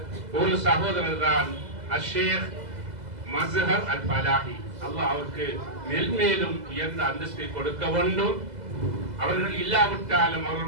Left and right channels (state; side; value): late; left; 2.0 ms